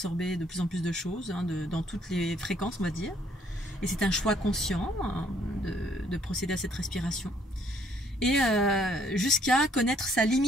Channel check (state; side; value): normal; both; correlation 0.65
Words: de plus en plus de choses, dans toutes les fréquences, on va dire. Et c'est un choix conscient de procéder à cette respiration. Et jusqu'à connaître sa